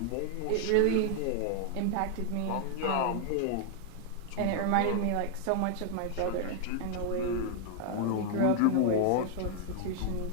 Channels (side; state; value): both; different; correlation 0.00